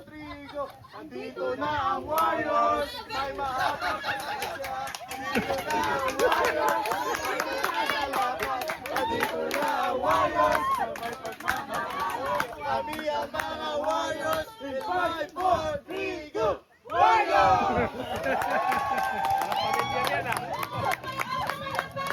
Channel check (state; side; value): identical; both; correlation 1.00